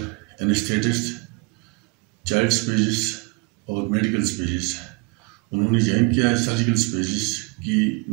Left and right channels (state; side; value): quieter; left; 29.3 dB